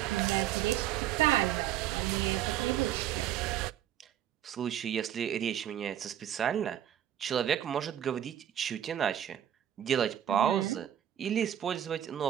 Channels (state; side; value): quieter; left; 10.8 dB